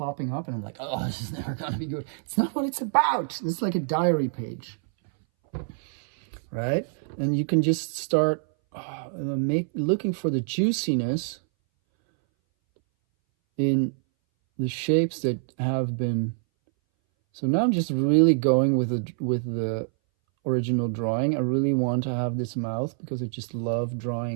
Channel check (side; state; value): left; silent; 60 dB below the other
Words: up and I'm like, oh, this is never going to be good. It's not what it's about. It's like a diary page, right? And you can just start looking for the juiciness in the shapes that have been. So now I'm just really going with the original drawing. I really want to have this mouth because I just love